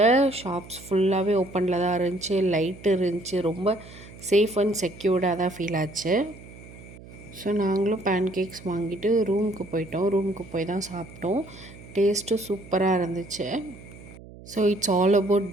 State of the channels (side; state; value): right; noise; hum, 18 dB below the sound